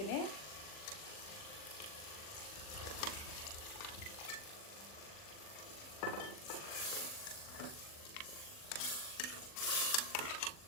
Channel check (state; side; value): late; right; 40 ms